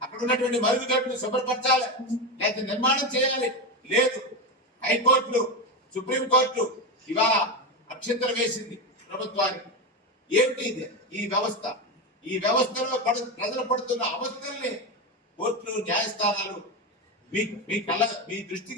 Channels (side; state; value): both; normal; correlation 0.15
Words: అక్కడ ఉన్నటువంటి మరుగుదొడ్లు శుభ్రపరచాలి, లేకపోతే నిర్మాణం చేయాలి. లేదు, హైకోర్టులు సుప్రీంకోర్టు ఇవాళ అక్షంతలు వేసింది ప్రభుత్వానికి. ఏంటి ఈ వ్యవస్థ? ఈ వ్యవస్థలో ప్రజలు పడుతున్న అవస్థల్ని కోర్టులు న్యాయస్థానాలు మీ